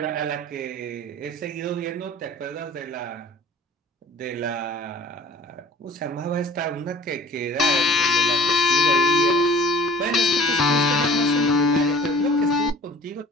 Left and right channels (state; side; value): normal; both; correlation 0.45